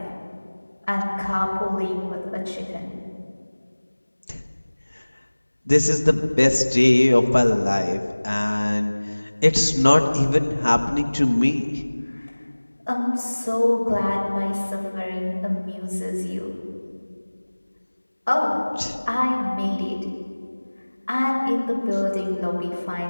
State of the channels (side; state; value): both; inverted; correlation -1.00